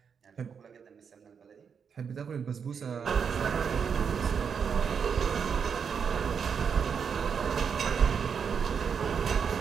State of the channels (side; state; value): left; quieter; 6.7 dB